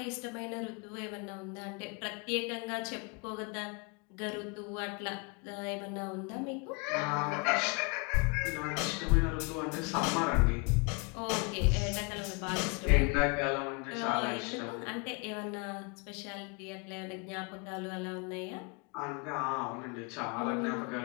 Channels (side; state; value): right; quieter; 32.1 dB